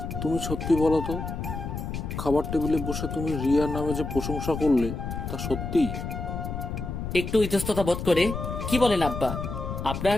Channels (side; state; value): left; noise; rumble, 5 dB below the sound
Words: তুমি সত্যি বলো তো, খাবার টেবিলে বসে তুমি রিয়ার নামে যে প্রশংসা করলে তা সত্যি? একটু ইতস্ততা বোধ করে, কি বলেন আব্বা,